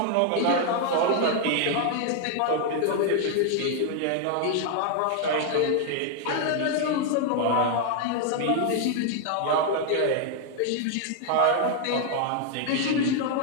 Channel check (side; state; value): both; different; correlation 0.00